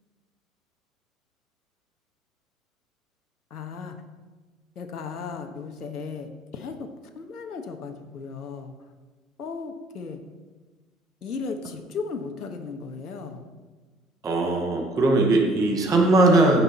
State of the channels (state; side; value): normal; both; correlation 0.59